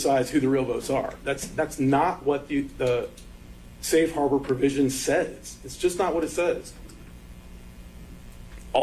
who the real votes are. That's not what the safe harbor provision says. It's just not what it says.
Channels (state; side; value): identical; both; correlation 1.00